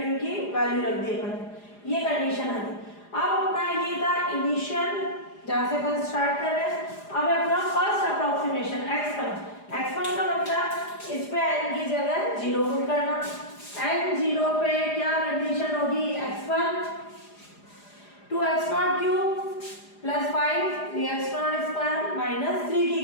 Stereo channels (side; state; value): right; late; 4.9 ms